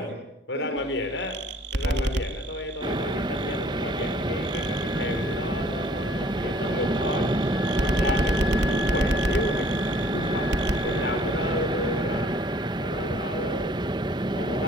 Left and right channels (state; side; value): normal; both; correlation 0.57